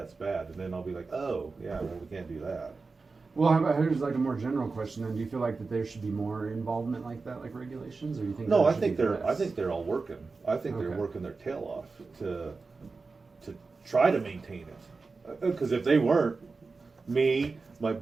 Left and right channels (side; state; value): left; quieter; 4.2 dB